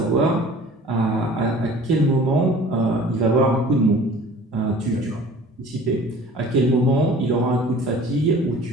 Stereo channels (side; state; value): both; normal; correlation 0.46